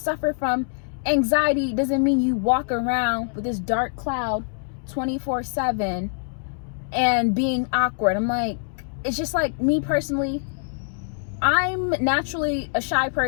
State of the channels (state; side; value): silent; right; digital silence